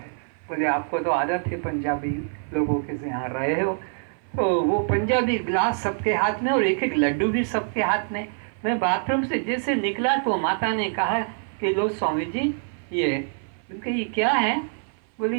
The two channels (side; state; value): left; silent; 59 dB below the other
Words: बोले आपको तो आदत है पंजाबी लोगों के से यहाँ रहे हो। तो वो पंजाबी गिलास सबके हाथ में और एक एक लड्डू भी सबके हाथ में। मैं बाथरूम से जैसे निकला तो माता ने कहा कि लो स्वामी जी ये, उनके ये क्या है? बोले